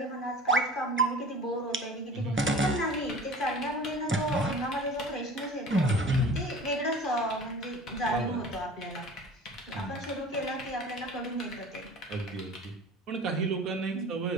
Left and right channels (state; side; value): normal; both; correlation 0.41